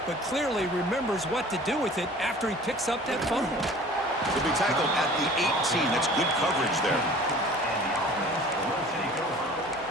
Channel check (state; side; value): normal; both; correlation 0.46